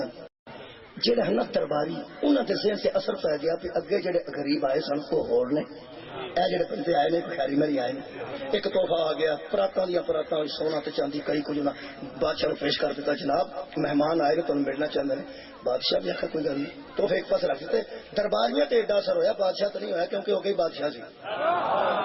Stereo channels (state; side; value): identical; both; correlation 1.00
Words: جہاں ہے نا درباری انہوں کے ذہن سے اثر پی گیا بھی اگے جڑے غریب آئے سن وہ ہور نے اے جڑے بندے آئے نے کوئی خیری میری آئے نے ایک تحفہ آ گیا پراتاں دیا پراتاں سونا تے چاندی کئی کچھ بادشاہ کو پیش کر دیتا جناب مہمان آئے نے تمہیں ملنا چاہتے ہیں بادشاہ بھی آخر کوئی گل نہیں تحفے ایک پاس رکھ دیتے درباریاں تے ایڈا اثر ہویا بادشاہ تو نہیں ہویا کیونکہ وہ گئی بادشاہ سی